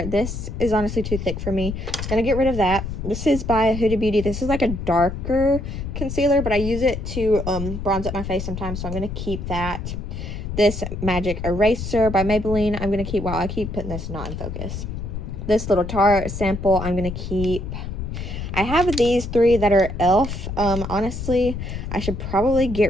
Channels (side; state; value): left; noise; rumble, 6 dB below the sound